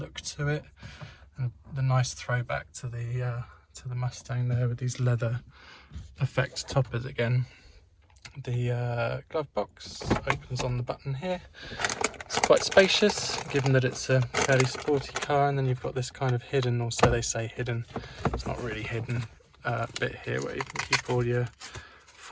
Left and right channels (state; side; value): identical; both; correlation 1.00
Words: to it, and the nice throwback to the Mustang there with these leather effect toppers again. The glove box opens on the button here. It's quite spacious, given that it's a fairly sporty car, and then you've got this kind of hidden, or so they say hidden, it's not really hidden, bit here where you can keep all your